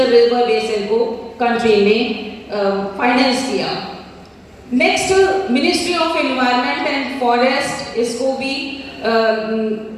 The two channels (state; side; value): identical; both; correlation 1.00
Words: रिवर बेसिन को कंट्री में फाइनेंस किया। Next, ministry of environment and forest, इसको भी